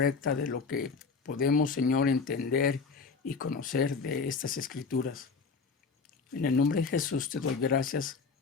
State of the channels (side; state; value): right; quieter; 4.8 dB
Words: de lo que podemos, Señor, entender y conocer de estas escrituras. En el nombre de Jesús te doy gracias